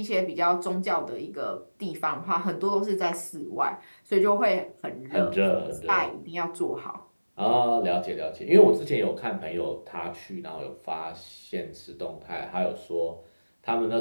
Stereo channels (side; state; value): both; inverted; correlation -1.00